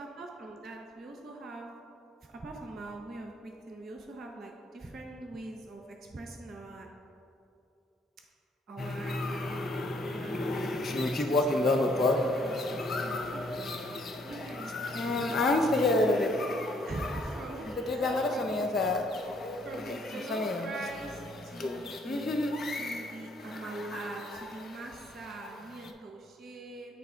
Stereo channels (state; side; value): normal; both; correlation 0.66